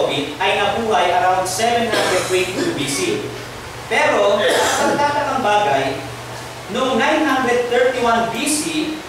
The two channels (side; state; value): both; identical; correlation 1.00